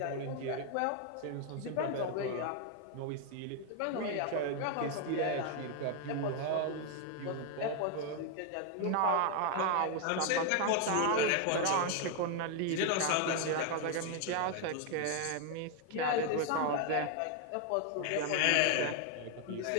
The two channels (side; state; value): both; different; correlation 0.01